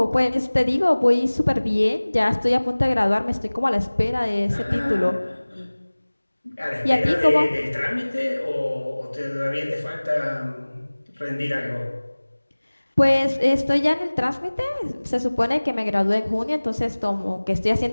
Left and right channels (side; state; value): both; inverted; correlation -1.00